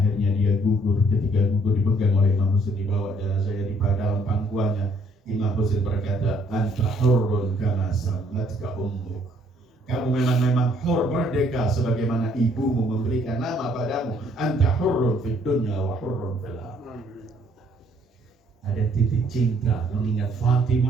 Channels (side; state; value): both; normal; correlation 0.65